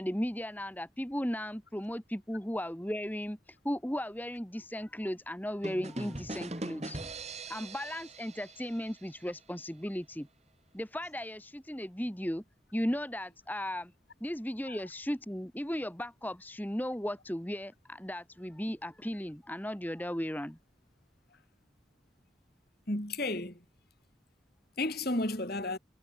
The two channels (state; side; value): normal; both; correlation 0.83